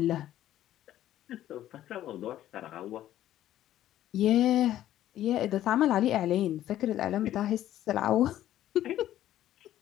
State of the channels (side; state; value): right; quieter; 12.8 dB